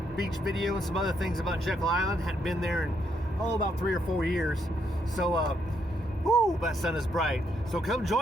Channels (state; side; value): normal; both; correlation 0.75